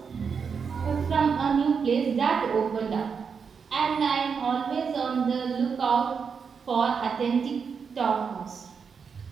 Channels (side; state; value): left; quieter; 6.0 dB